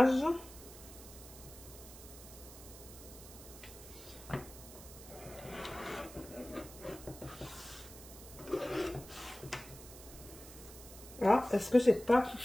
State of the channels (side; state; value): right; noise; hiss, 16 dB below the sound